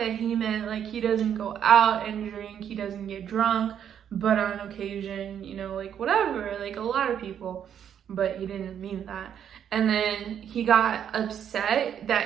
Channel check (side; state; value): left; quieter; 9.0 dB